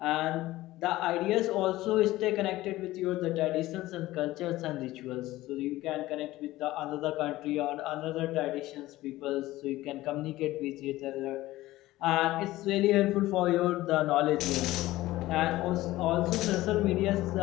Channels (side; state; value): right; quieter; 17.0 dB